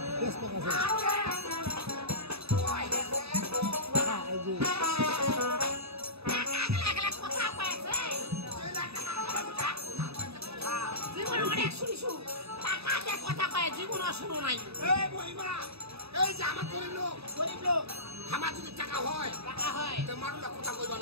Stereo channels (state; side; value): late; left; 0.78 ms